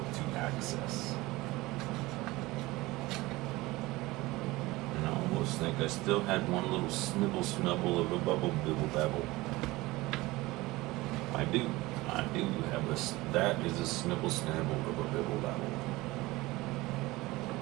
to access. And I almost think I still had one little snibble snubble of a bubble bibble babble. I do have that is a snibble snabble of a bibble babble.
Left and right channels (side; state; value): left; quieter; 20.3 dB